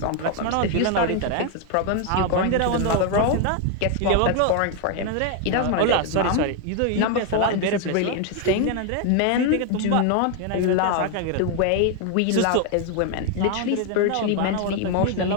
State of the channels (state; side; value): different; both; correlation 0.01